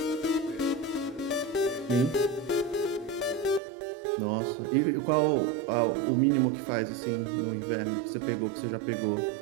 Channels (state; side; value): drops out; left; at 3.6 s